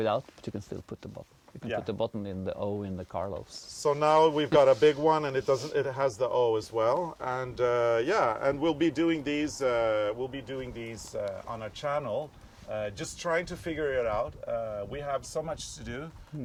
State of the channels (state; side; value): identical; both; correlation 1.00